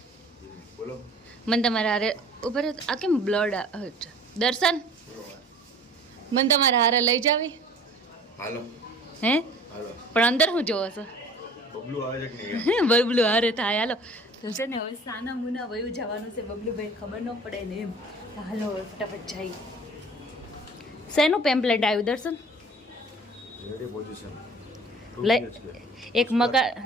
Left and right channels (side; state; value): both; normal; correlation 0.47